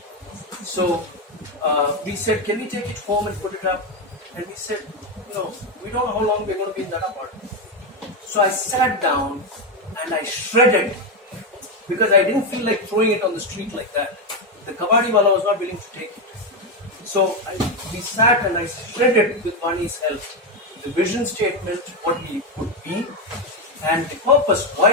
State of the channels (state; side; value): normal; both; correlation 0.08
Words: So we said, can we take it home and put it up? And we said, no, we don't know how long we're going to be in that apartment. So I sat down and I shredded, because I didn't feel like throwing it on the street like that. The kabaddi wala was not willing to take it. So we sat and I shredded, with Vaani's help, the vision statement, what we would be, and the purpose,